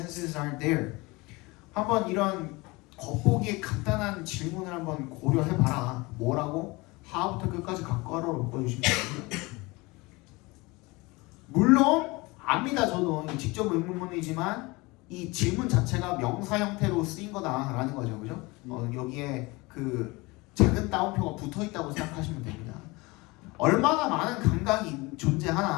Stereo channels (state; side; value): quieter; right; 23.9 dB